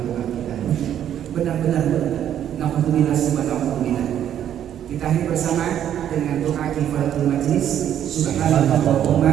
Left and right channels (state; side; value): quieter; left; 10.3 dB